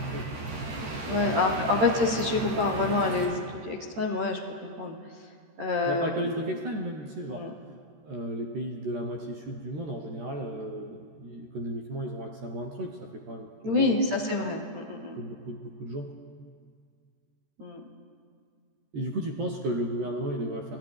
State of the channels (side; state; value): left; late; 13 ms